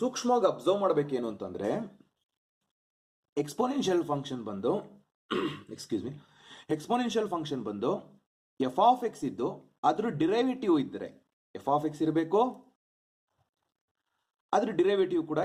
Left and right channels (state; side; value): identical; both; correlation 1.00